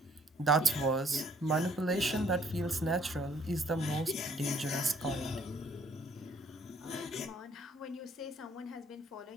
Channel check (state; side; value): normal; both; correlation 0.62